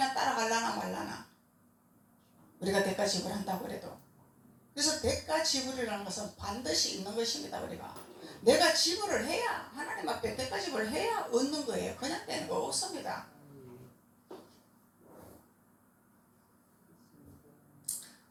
따라갈라나 말라나 우리가 대가 지불한다고 그래도. 그래서 대가 지불이라는 것은 반드시 있는 것입니다. 우리가 내가 지불을 해야, 하나님 앞에 대가 지불을 해야 얻는 거예요. 그냥 되는 거 없습니다.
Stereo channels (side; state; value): both; identical; correlation 1.00